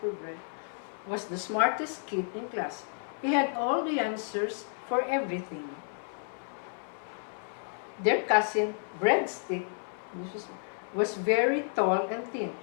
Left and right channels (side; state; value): right; silent; 57 dB below the other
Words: was the smartest kid in class. He had all the answers for everything. Their cousin, Breadstick, was very tall and thin,